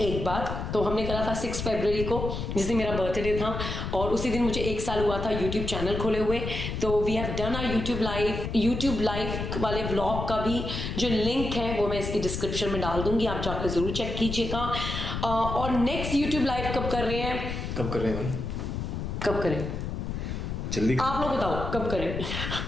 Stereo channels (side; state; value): left; noise; rumble, 4 dB below the sound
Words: बार. तो हमने करा था 6 फरवरी को, जिस दिन मेरा बर्थडे था, और उसी दिन मुझे 1 साल हुआ था यूट्यूब चैनल खोले हुए. तो we have done our YouTube live वाले व्लॉग का भी जो लिंक है वो मैं इसकी डिस्क्रिप्शन में डाल दूंगी, आप जाकर जरूर चेक कीजिएगा. और नेक्स्ट यूट्यूब लाइव कब कर रहे हैं जल्दी आप लोग बताओ कब करें.